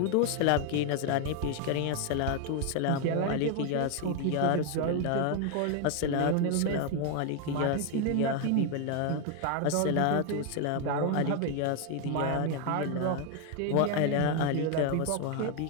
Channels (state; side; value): different; both; correlation 0.01